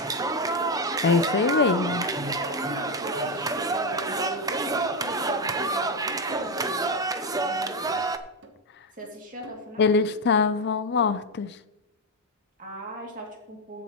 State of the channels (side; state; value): both; normal; correlation 0.07